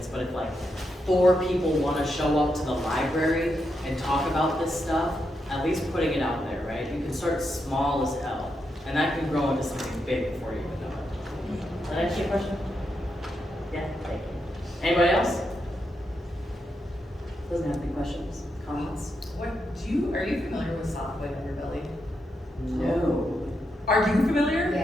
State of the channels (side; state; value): both; normal; correlation 0.83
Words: but if like 4 people want to show up to the library and talk about this stuff, at least putting it out there, right? You can start small as hell, and that can grow into something big before you even know it. Did I answer your question? Yeah, thank you. Anybody else? Doesn't have any questions, comments? Are you familiar with Softway Underbelly? No. Are you familiar?